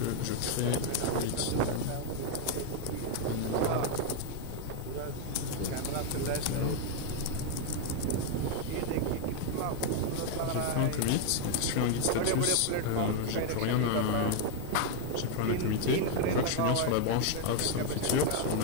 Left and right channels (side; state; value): both; different; correlation 0.01